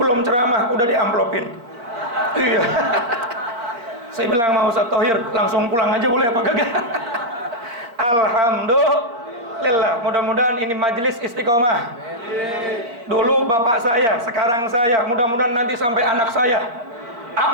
ceramah udah diamplopin. Iya. Saya bilang mau Ustaz Thohir langsung pulang aja boleh apa kagak? Alhamdulillah. Mudah-mudahan ini majelis istiqomah. Dulu bapak saya, sekarang saya, mudah-mudahan nanti sampai anak saya.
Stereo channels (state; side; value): late; left; 4.4 ms